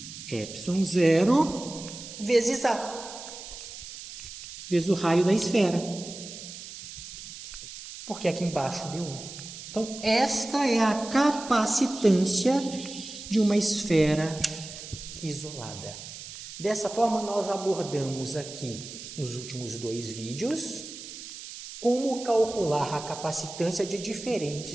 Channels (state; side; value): noise; right; hiss, 12 dB below the sound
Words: epsilon 0, vezes A. Vezes o raio da esfera. Porque aqui embaixo deu 1. Então, esta é a capacitância de uma esfera isolada. Dessa forma, nós abordamos aqui, nos últimos 2 vídeos, como calcular a capacitância de